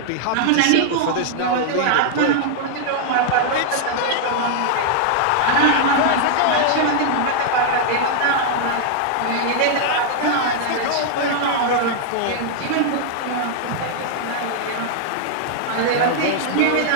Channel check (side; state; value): both; different; correlation -0.01